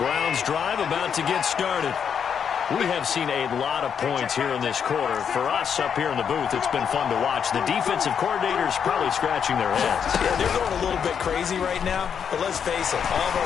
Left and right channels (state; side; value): quieter; right; 7.5 dB